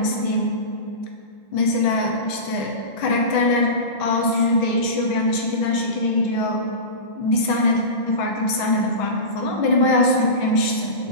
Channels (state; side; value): late; right; 6.2 ms